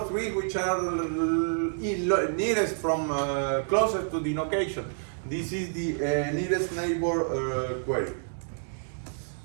3 which are nearest from closest to the location. This is the nearest neighbor query.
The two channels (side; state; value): left; silent; digital silence